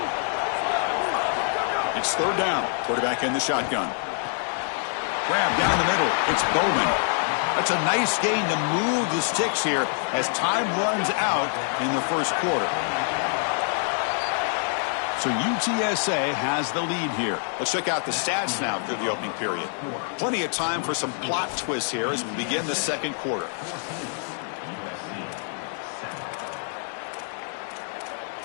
It's 3rd down. Quarterback in the shotgun. Grab down the middle. It's Bowman. That's a nice gain to move the sticks here as time runs out in the first quarter. So UTSA has the lead here. Let's check out the stats now through the opening period. Plenty of time for some plot twists here as we begin the second quarter.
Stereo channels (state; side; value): silent; right; 61 dB below the other